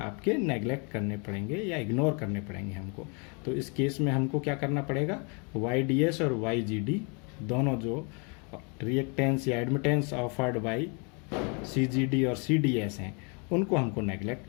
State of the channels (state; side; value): quieter; right; 34.4 dB